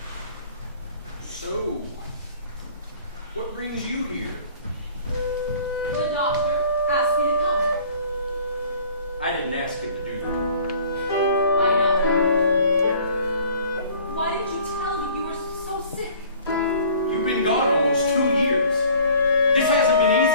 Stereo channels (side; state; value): both; inverted; correlation -0.51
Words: So, what brings you here? The doctor asked me to come. I didn't ask him to do that. I know. Why did you tell me you were so sick? You've been gone almost 2 years. This hasn't been